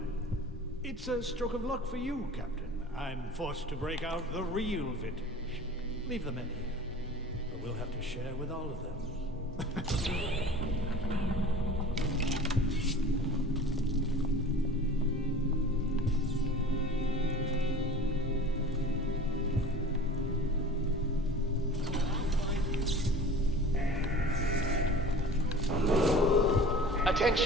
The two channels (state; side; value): normal; both; correlation 0.41